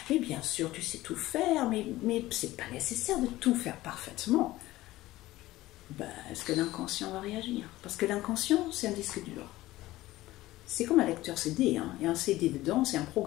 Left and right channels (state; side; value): quieter; right; 17.0 dB